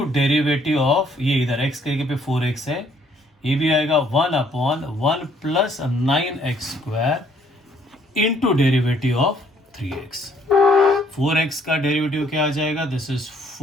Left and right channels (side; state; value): both; normal; correlation 0.64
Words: derivative of ये इधर x करके पे 4x है, ये भी आएगा 1/1 plus 9x square into derivative of 3x. 4x का डेरिवेटिव क्या आ जाएगा, this is